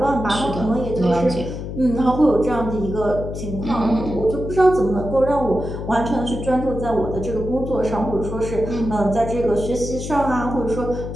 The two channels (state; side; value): noise; left; hum, 7 dB below the sound